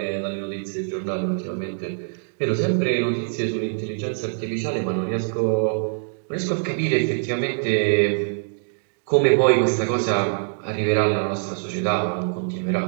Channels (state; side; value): silent; left; digital silence